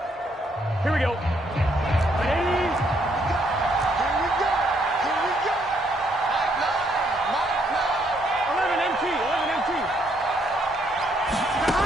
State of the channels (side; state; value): both; normal; correlation 0.71